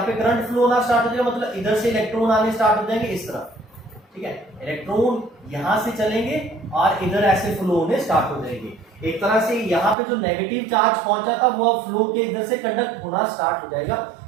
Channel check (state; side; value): drops out; left; at 10.0 s